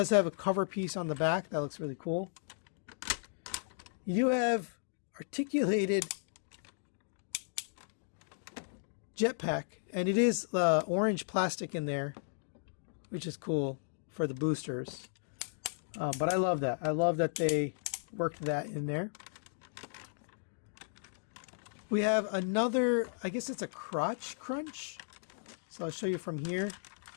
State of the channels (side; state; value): right; silent; digital silence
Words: have a cover piece on the back. That looks really cool. You do have articulated jetpack, and it is orange plastic in there, which is cool for the boosters. But I love that. I love that they worked that in there. We have another, I guess it's a crotch crunch. So I'll show you from here.